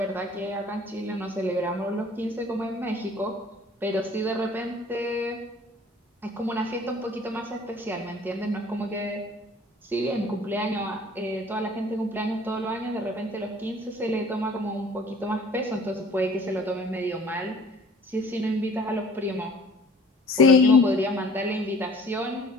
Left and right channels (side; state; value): both; normal; correlation 0.51